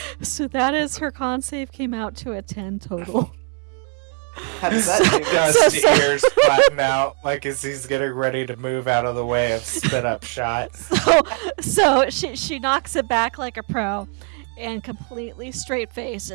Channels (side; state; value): left; quieter; 39.9 dB